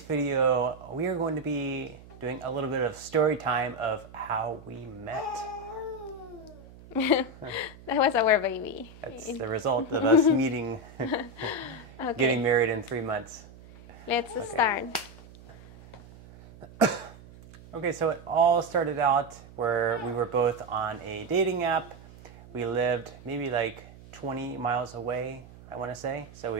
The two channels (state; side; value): noise; right; hum, 20 dB below the sound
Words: video we are going to be doing a little bit of story time of how we met. That was our baby. That's the result of us meeting, Okay, getting married in 3 months. let's start. Okay, so it all started out where we were both on a dating app. We lived maybe like 20 miles away, I want to say. So